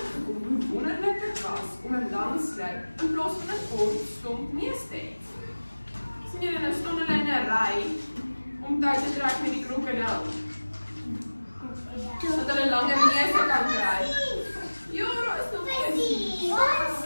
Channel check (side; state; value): both; inverted; correlation -1.00